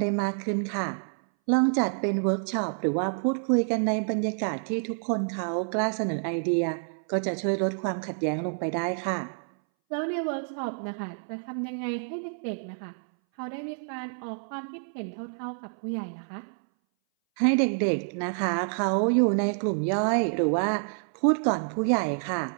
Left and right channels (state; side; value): silent; left; 59 dB below the other